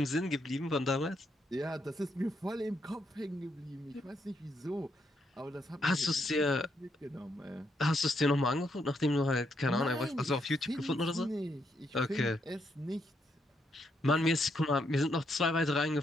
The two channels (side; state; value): both; normal; correlation 0.77